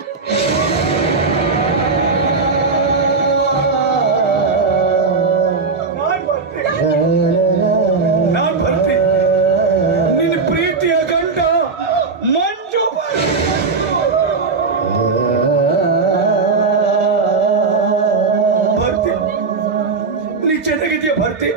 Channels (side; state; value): left; quieter; 4.5 dB